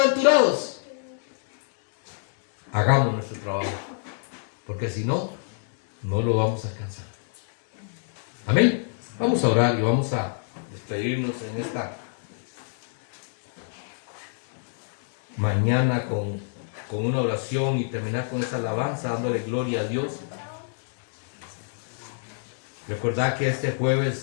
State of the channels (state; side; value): silent; right; digital silence